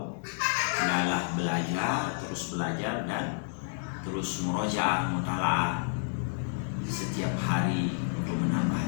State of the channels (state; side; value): silent; right; digital silence